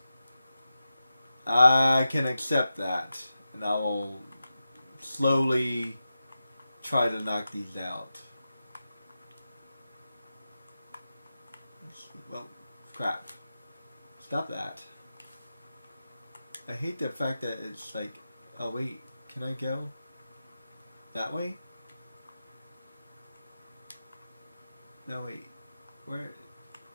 I can accept that, and I will slowly try to knock these out. Well, crap. Stop that. I hate the fact that it's like, oh wait, can I go that way? No, wait. Where?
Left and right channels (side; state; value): both; inverted; correlation -0.92